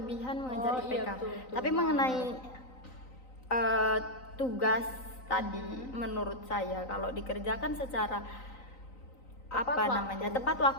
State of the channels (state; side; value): late; right; 3.9 ms